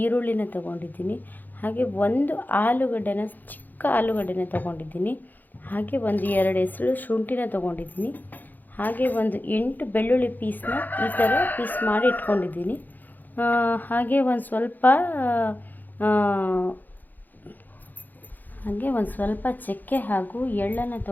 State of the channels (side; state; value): right; late; 0.085 ms